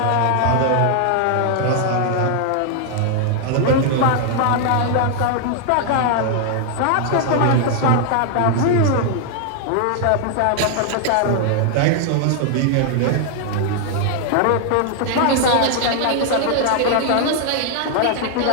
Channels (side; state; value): both; different; correlation 0.00